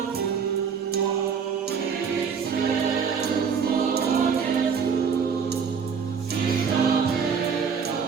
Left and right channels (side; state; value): left; quieter; 6.4 dB